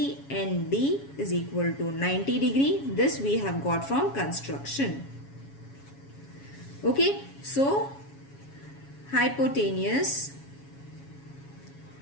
is equal to 90 degree. This we have got from construction. Okay, so hypotenuse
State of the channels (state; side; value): late; right; 7.2 ms